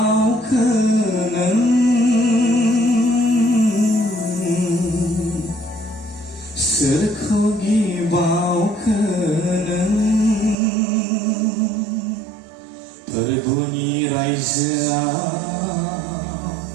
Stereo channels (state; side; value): drops out; left; at 10.6 s